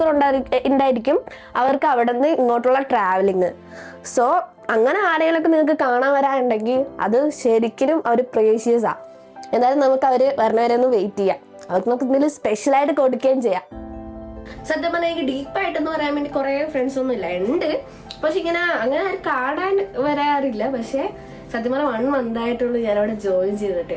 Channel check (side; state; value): both; identical; correlation 1.00